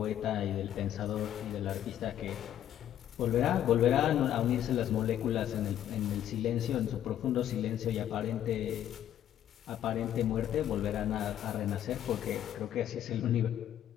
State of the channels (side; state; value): right; quieter; 11.0 dB